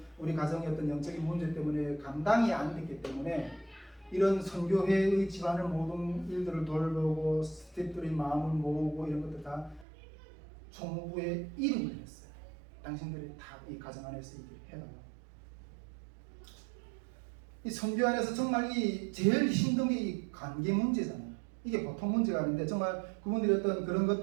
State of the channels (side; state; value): left; drops out; at 9.9 s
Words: 우리 가정의 어떤 영적인 문제 때문에 감당이 안 됐기 때문에 이런 선교회의 집안을 모든 일들을 돌보고 스태프들의 마음을 모으고 이런 것들 다 총무부에 이름을 했어요. 당신들이 다 이 가정 안에서 이렇게 해달라고. 이 선교 안에서 정말 이 제일 힘든 게 이 관계 문제잖아요. 이게 보통 문제가 아닌데 정말 그분들이 어떤 그런